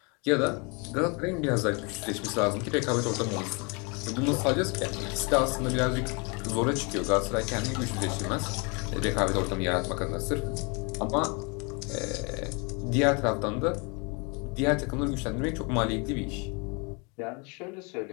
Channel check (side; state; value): right; quieter; 31.9 dB